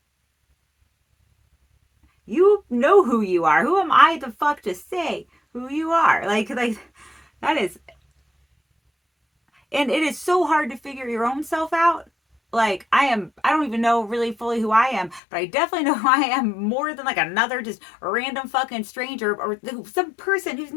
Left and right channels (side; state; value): right; drops out; at 15.2 s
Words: you know who you are. Who am I the fuck to say who you are? Like that is, and it is so hard to figure your own self out. Like, I don't even know really fully who I am, but I definitely know who I am more than like another just random fucking stranger, or some person who's